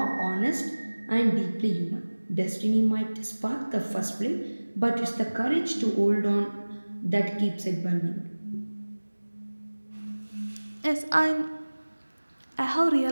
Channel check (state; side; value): inverted; both; correlation -1.00